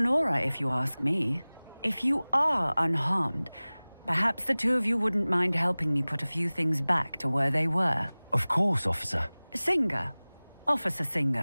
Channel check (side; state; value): both; inverted; correlation -1.00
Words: aura, if you ask me. If you are unharmed, perhaps the two of you wouldn't mind helping me put a few things back to where they were. Of course, officer. Singer. Officer